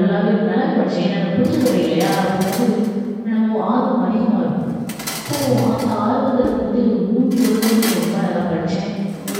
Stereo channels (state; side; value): identical; both; correlation 1.00